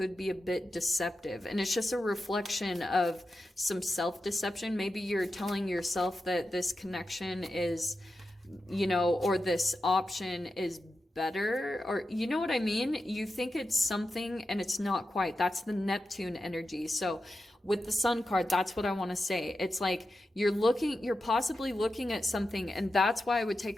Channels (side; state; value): both; normal; correlation 0.90